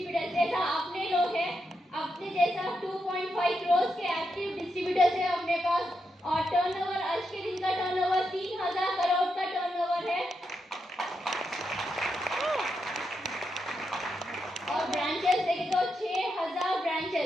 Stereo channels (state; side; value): normal; both; correlation 0.84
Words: जैसा अपने लोग हैं, अपने जैसा 2.5 crores के एक्टिव डिस्ट्रीब्यूटर्स है अपने पास। और टर्नओवर आज के दिन का टर्नओवर 3000 करोड़ का टर्नओवर है। और ब्रांचेस देखें तो 6000